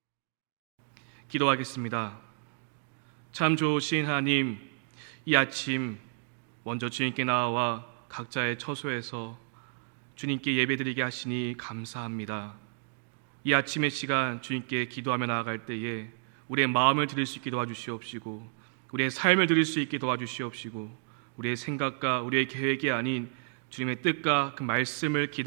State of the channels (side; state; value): left; silent; 57 dB below the other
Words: 기도하겠습니다. 참 좋으신 하나님, 이 아침 먼저 주님께 나와 각자의 처소에서 주님께 예배드리게 하시니 감사합니다. 이 아침의 시간 주님께 기도하며 나아갈 때에 우리의 마음을 드릴 수 있게 도와주시옵시고 우리의 삶을 드릴 수 있게 도와주시옵시고 우리의 생각과 우리의 계획이 아닌 주님의 뜻과 그 말씀을